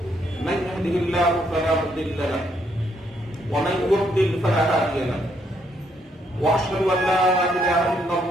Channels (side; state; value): both; normal; correlation 0.73